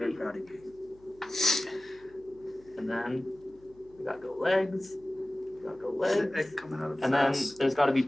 proud of you. And then we got to go legs. We got to go legs. Egg coming out of And then fast. there's got to be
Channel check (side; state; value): left; noise; hum, 27 dB below the sound